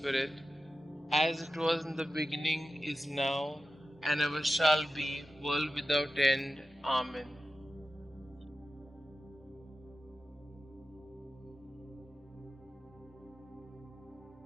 as it was in the beginning, is now, and ever shall be, world without end. Amen.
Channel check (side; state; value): both; normal; correlation 0.93